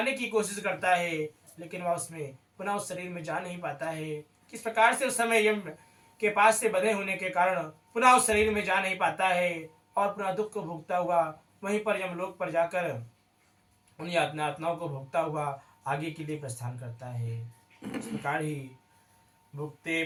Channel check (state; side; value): identical; both; correlation 1.00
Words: की कोशिश करता है, लेकिन वह उसमें पुनः उस शरीर में जा नहीं पाता है। किस प्रकार से उस समय यम के पास से बंधे होने के कारण पुनः उस शरीर में जा नहीं पाता है और पुनः दुख को भोगता हुआ वहीं पर यमलोक पर जाकर उन यातनाओं को भोगता हुआ आगे के लिए प्रस्थान करता है। इस प्रकार ही भुक्ते